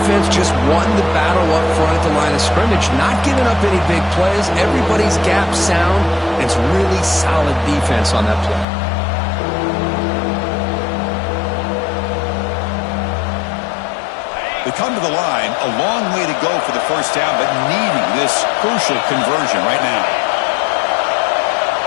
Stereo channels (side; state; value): right; drops out; at 8.7 s